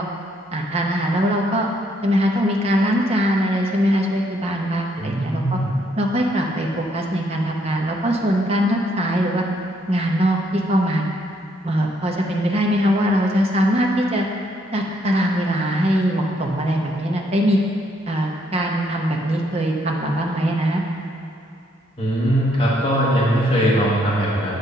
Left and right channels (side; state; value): both; normal; correlation 0.71